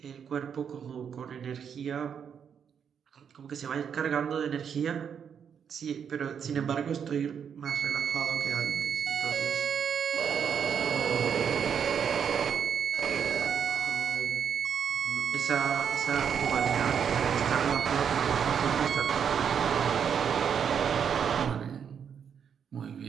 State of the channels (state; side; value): quieter; left; 7.6 dB